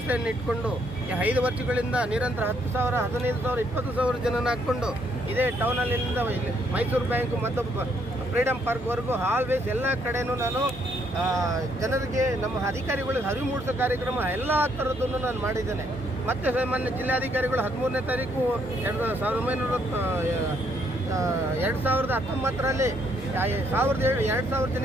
ಇಟ್ಕೊಂಡು ಈ 5 ವರ್ಷಗಳಿಂದ ನಿರಂತರ 10,000, 15,000, 20,000 ಜನನ ಹಾಕ್ಕೊಂಡು ಇದೇ ಟೌನಲ್ಲಿಂದ ಮೈಸೂರು ಬ್ಯಾಂಕ್ ಮತ್ತು ಫ್ರೀಡಮ್ ಪಾರ್ಕ್ವರೆಗೂ ಆಲ್ವೇಸ್ ಎಲ್ಲ ಕಡೆನೂ ನಾನು ಜನರಿಗೆ, ನಮ್ಮ ಅಧಿಕಾರಿಗಳಿಗೆ ಅರಿವು ಮೂಡಿಸೋ ಕಾರ್ಯಕ್ರಮ ಎಲ್ಲ ಥರದ್ದನ್ನು ನಾನು ಮಾಡಿದ್ದೇನೆ. ಮತ್ತು ಸಾಮಾನ್ಯ ಜಿಲ್ಲಾಧಿಕಾರಿಗಳು 13ನೇ ತಾರೀಕು 2019ರಲ್ಲಿ 2,000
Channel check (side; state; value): both; normal; correlation 0.71